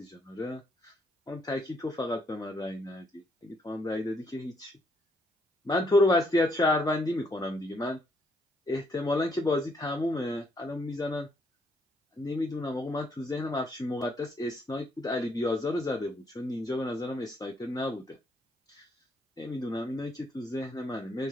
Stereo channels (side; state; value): both; normal; correlation 0.72